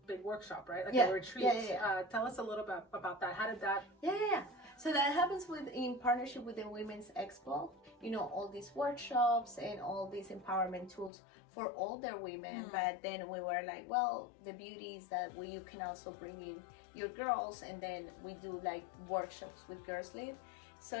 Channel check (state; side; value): drops out; right; at 11.1 s